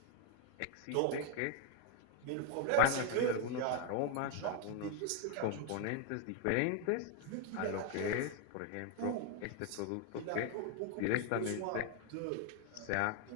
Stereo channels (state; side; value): different; both; correlation 0.01